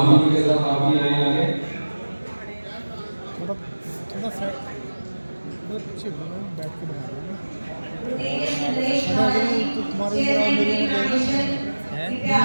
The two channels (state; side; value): inverted; both; correlation -1.00